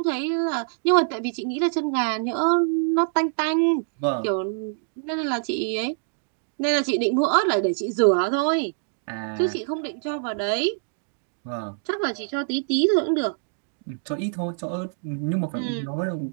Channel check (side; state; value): left; silent; digital silence